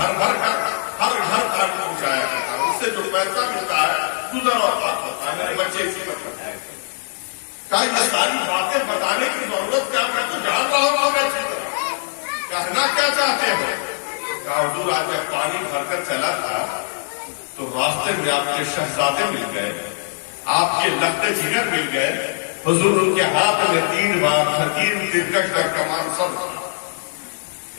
بھر کر ہر گھر تک پہنچایا کرتا ہوں. اس سے جو پیسہ ملتا ہے گزر اور بات ہوتا ہے. میرے بچے اسی پر کرتے ہیں. کہا یہ ساری باتیں بتانے کی ضرورت کیا، میں تو جان رہا ہوں. میں اچھی طرح کہنا کیا چاہتے ہو؟ کہا حضور آج جب پانی بھر کر چلا تھا تو راستے میں آپ کے شہزادے مل گئے، آپ کے لخت جگر مل گئے. حضور ان کے ہاتھ میں 3 بار حکیم ترکش اور کمان سب تھا.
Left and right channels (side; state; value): right; silent; digital silence